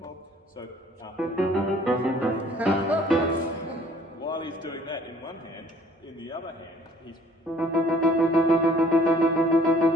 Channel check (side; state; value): both; normal; correlation 0.57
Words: So while he's doing that in one hand, in the other hand he's